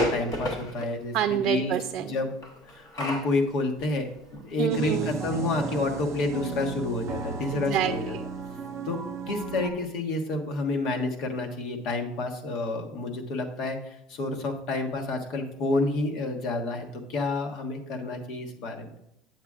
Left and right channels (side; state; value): both; normal; correlation 0.46